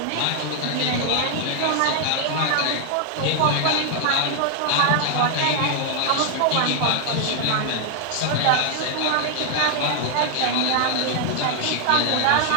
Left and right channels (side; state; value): both; different; correlation 0.00